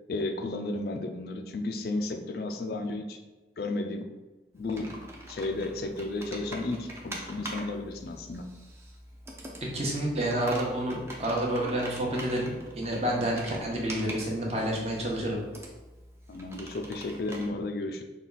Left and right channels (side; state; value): both; normal; correlation 0.50